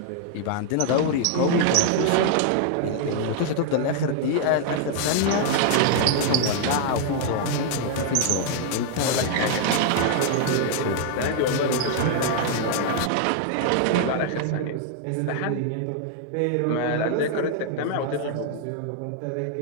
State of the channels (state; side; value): different; both; correlation 0.00